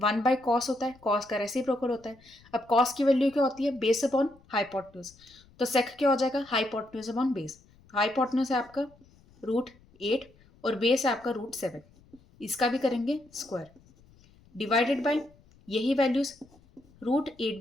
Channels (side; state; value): left; noise; rumble, 28 dB below the sound